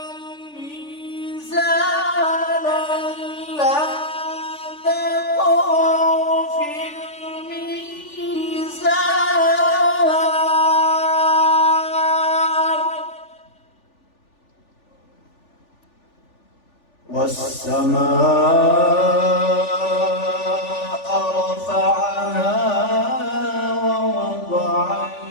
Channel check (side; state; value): right; late; 3.4 ms